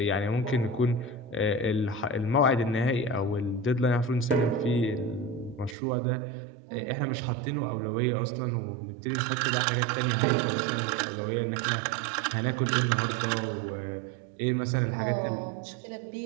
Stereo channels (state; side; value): drops out; left; at 5.8 s